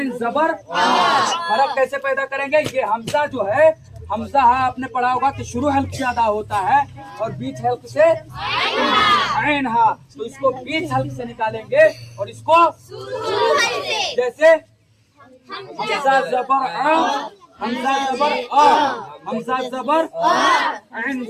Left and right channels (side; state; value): both; identical; correlation 1.00